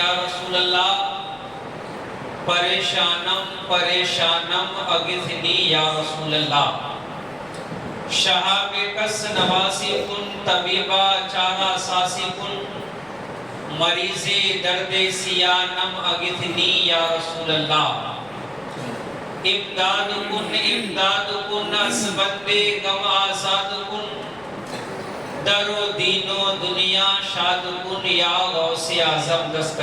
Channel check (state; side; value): noise; left; rumble, 30 dB below the sound